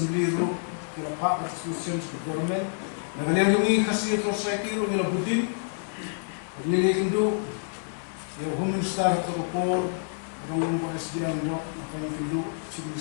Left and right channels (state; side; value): silent; right; 60 dB below the other